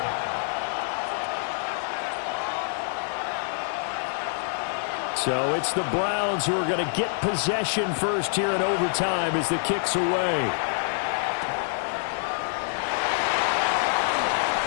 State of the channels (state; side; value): silent; right; 61 dB below the other